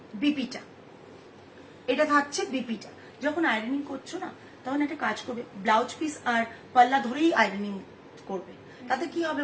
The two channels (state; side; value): identical; both; correlation 1.00